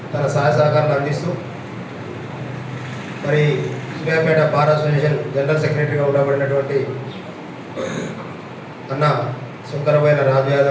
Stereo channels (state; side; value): identical; both; correlation 1.00